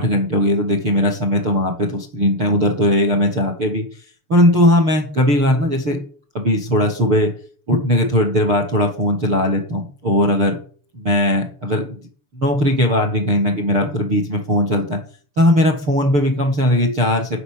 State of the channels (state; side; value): late; left; 6.9 ms